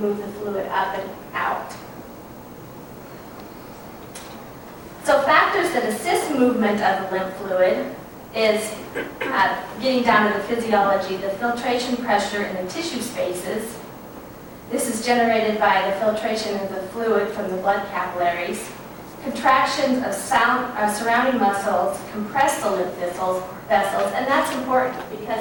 move the fluid up and out. So factors that assist movement of the lymph fluid is getting down to the physiology, the filtration pressure in the tissue spaces. This is generated by the filtration of the fluid from the blood capillaries. Contractions of surrounding muscles compress the lymph vessels, and that's important because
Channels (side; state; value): both; identical; correlation 1.00